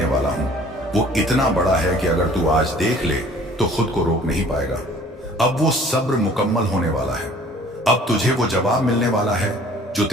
वाला हूं वो इतना बड़ा है कि अगर तू आज देख ले तो खुद को रोक नहीं पाएगा। अब वो सब्र मुकम्मल होने वाला है। अब तुझे वो जवाब मिलने वाला है जो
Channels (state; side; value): normal; both; correlation 0.52